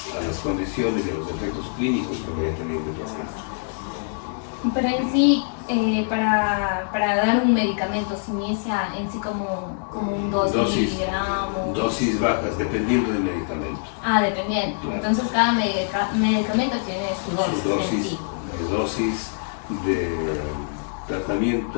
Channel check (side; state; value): right; silent; digital silence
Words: las condiciones y a los efectos clínicos que vaya teniendo el paciente. Pero en sí, para dar un medicamento, se inicia en sí como un 2 miligramos. Dosis bajas, dependiendo del medicamento. Dependiendo. Claro. Entonces cada medicamento tiene su dosis en sí. Las dosis de